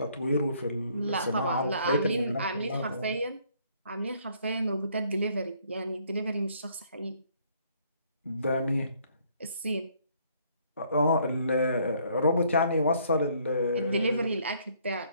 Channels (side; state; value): both; inverted; correlation -0.65